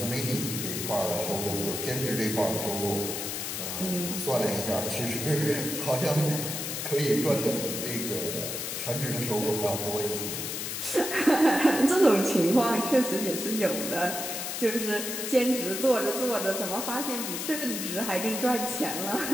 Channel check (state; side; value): noise; left; hiss, 4 dB below the sound